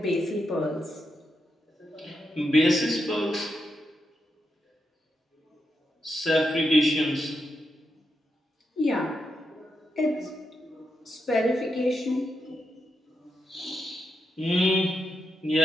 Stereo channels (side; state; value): both; normal; correlation 0.84